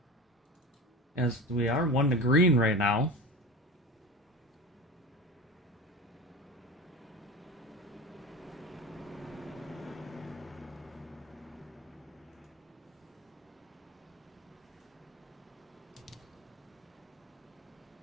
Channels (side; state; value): both; normal; correlation 0.31